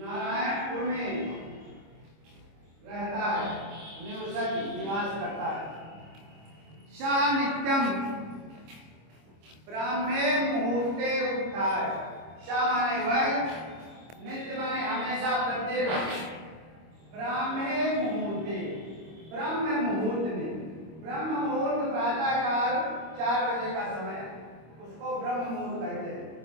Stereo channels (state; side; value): late; left; 25 ms